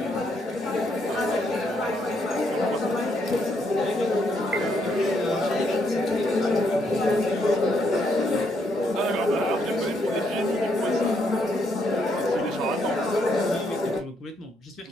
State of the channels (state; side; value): normal; both; correlation 0.74